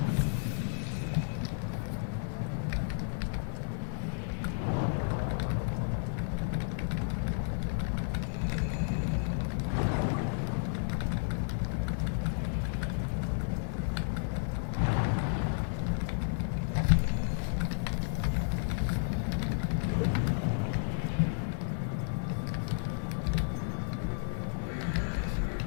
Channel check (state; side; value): silent; right; 56 dB below the other